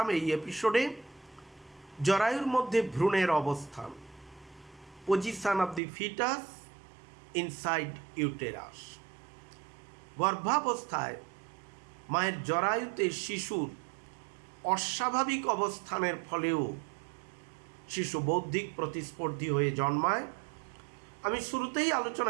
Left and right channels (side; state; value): left; drops out; at 5.8 s